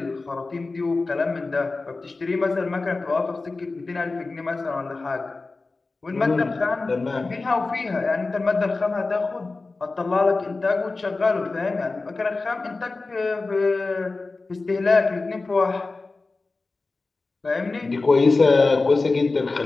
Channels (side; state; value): right; quieter; 3.6 dB